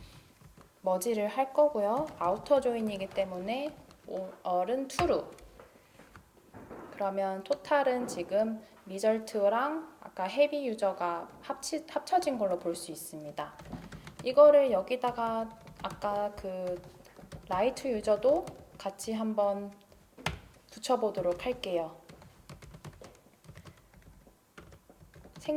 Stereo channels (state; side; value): identical; both; correlation 1.00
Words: 머지를 할 거고요. 아우터 조인이기 때문에 all은 true. 그러면 토탈은 지금 리절트랑 아까 헤비 유저가 합쳐진 걸로 볼 수 있습니다. 이거를 여기다가 아까 그 라이트 유저도 같이 한번 붙여보도록 할게요.